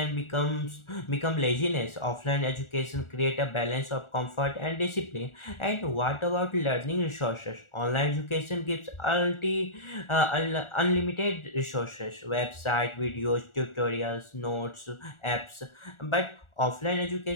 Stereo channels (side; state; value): right; late; 1.4 ms